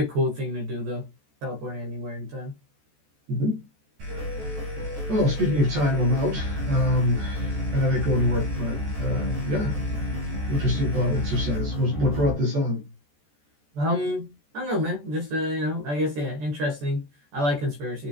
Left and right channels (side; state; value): left; late; 14 ms